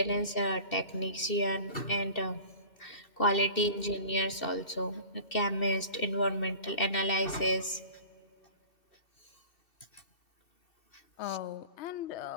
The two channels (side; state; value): right; late; 2.7 ms